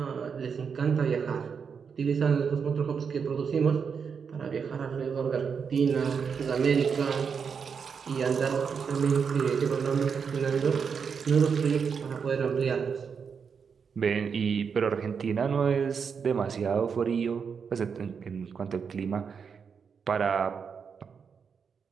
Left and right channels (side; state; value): left; quieter; 6.3 dB